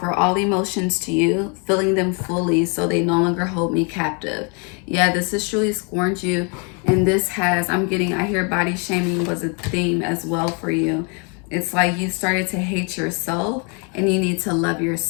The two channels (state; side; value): quieter; right; 35.3 dB